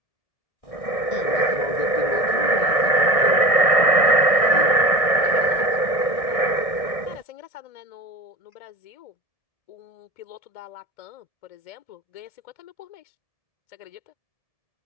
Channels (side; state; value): right; late; 1.6 ms